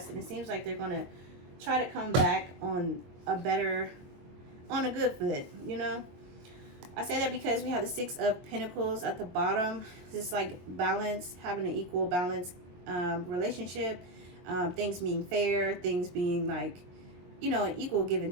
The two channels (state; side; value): late; left; 22 ms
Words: and it seems like they're gonna try to come back on a good foot, you know. I say that because we have the Six of Pentacles at the bottom. This is like balance, having an equal balance relationship, things being fair, things being like, you know, an equal give